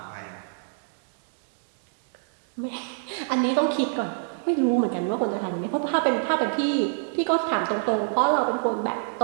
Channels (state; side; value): silent; left; digital silence